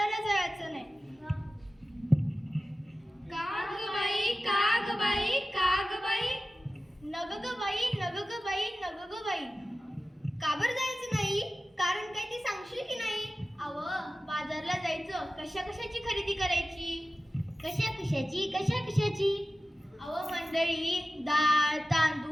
जायचं नाही. का ग बाई, का ग बाई, का ग बाई? नग ग बाई, नग ग बाई, नग ग बाई. का बरं जायचं नाही? कारण काय ते सांगशील की नाही? अहो, बाजारला जायचं, कशा कशाची खरेदी करायची? कशा कशाची, कशा कशाची? अहो मंडळी, डाळ,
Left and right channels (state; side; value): normal; both; correlation 0.94